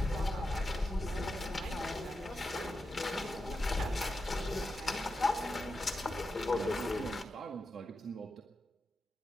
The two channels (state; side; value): normal; both; correlation 0.89